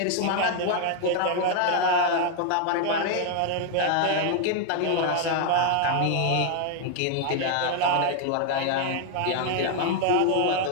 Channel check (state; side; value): different; both; correlation 0.00